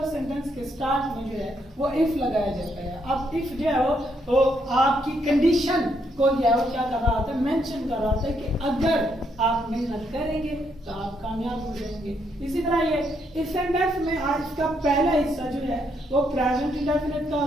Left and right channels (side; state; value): both; normal; correlation 0.75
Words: सेंटेंस के स्टार्ट में जो है वो इफ लगाया जाता है। अब इफ जो है वो आपकी कंडीशन को जो है वो क्या कर रहा होता है, मेंशन कर रहा होता है कि अगर आप मेहनत करेंगे तो आप कामयाब हो जाएंगे। इसी तरह ये इस सेंटेंस में आज इसका पहला हिस्सा जो है वो प्रेजेंट इंडेफिनिट का